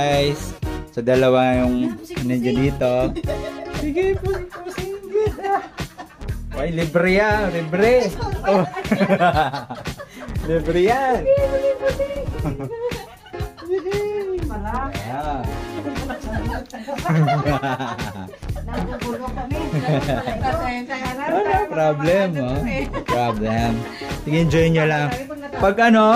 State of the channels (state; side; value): identical; both; correlation 1.00